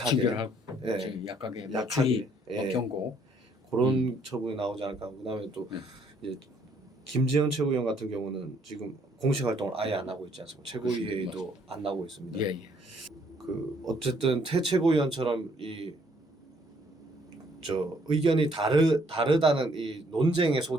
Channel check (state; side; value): normal; both; correlation 0.66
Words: 징계를 하고 예, 약하게 약하게 경고 그런 처분이 나오지 않을까. 그다음에 또 이제 김재현 최고위원 같은 경우는 지금 공식 활동을 아예 안 하고 있지 않습니까? 최고위 회의도 안 나오고 있습니다. 예, 예. 그 어쨌든 태 최고위원처럼 의견이 다르다는 이 논쟁의